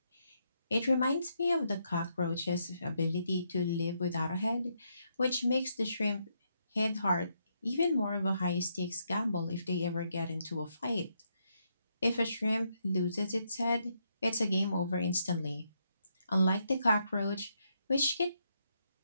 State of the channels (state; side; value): inverted; both; correlation -0.78